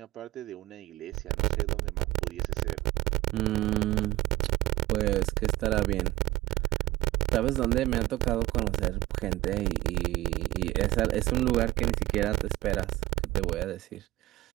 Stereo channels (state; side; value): quieter; left; 17.3 dB